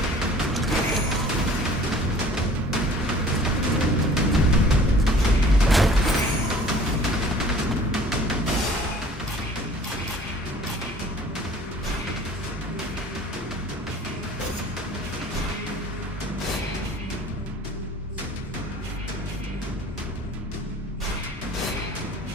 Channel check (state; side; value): normal; both; correlation 0.49